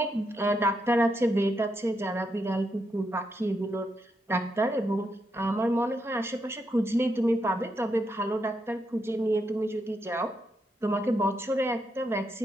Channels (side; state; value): both; normal; correlation 0.82